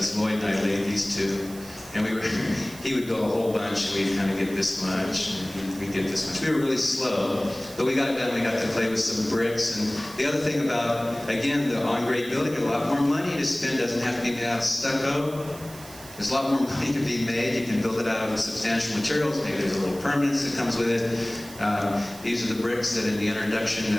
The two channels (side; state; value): right; noise; hiss, 17 dB below the sound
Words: Lloyd and I laid these 2, and he would build a whole bunch, and we'd kind of get this much, and we'd get this much. We were really slow, but we got it done. We got to play with some bricks, and the other thing about, again, the on-grade building, a lot more money to spend, doesn't have to be made out of stucco. There's a lot more money to be made. You can build it out of substantial materials. Maybe there's a little permanence that comes with it. These are the bricks that in the introduction